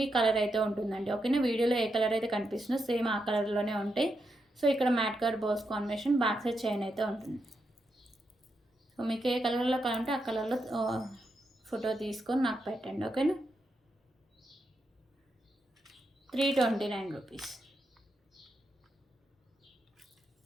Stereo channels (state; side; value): normal; both; correlation 0.84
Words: కలర్ అయితే ఉంటుందండి. ఓకేనా. వీడియోలో ఏ కలర్ అయితే కనిపిస్తుందో సేమ్ ఆ కలర్లోనే ఉంటాయి. సో ఇక్కడ matte colour balls combination, back side chain అయితే ఉంటుంది. సో మీకు ఏ కలర్లో కావాలంటే ఆ కలర్లో ఫోటో తీసుకొని నాకు పెట్టండి. ఓకేనా. 329 రూపీస్.